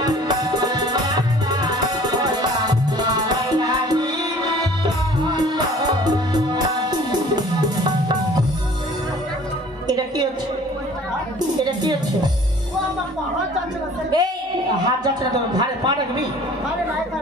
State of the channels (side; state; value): both; normal; correlation 0.50